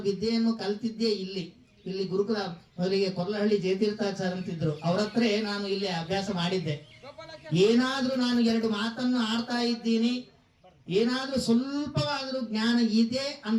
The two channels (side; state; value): both; identical; correlation 1.00